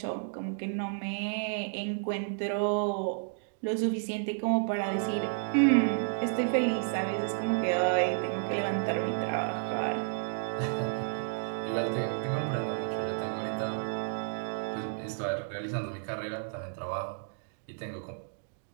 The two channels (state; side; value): silent; left; digital silence